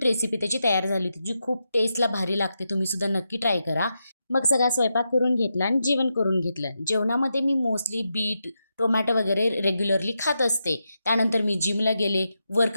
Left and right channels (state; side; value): inverted; both; correlation -0.86